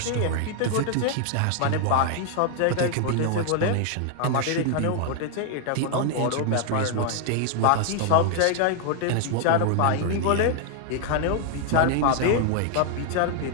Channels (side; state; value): both; different; correlation 0.00